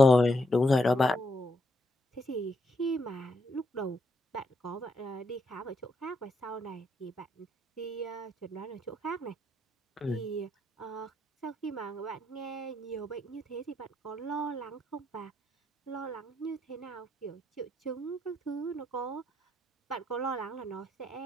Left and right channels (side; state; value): both; normal; correlation 0.77